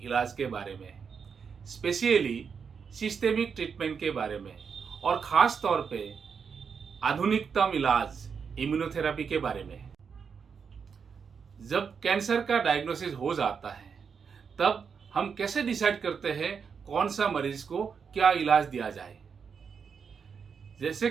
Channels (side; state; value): left; quieter; 6.3 dB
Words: इलाज के बारे में, स्पेशली सिस्टेमिक ट्रीटमेंट के बारे में और ख़ास तौर पे आधुनिकतम इलाज इम्यूनोथेरेपी के बारे में। जब कैंसर का डायग्नोसिस हो जाता है तब हम कैसे डिसाइड करते हैं कौन सा मरीज को क्या इलाज दिया जाए। जैसे